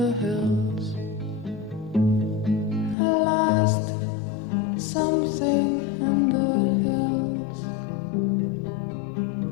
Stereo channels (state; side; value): drops out; right; at 3.0 s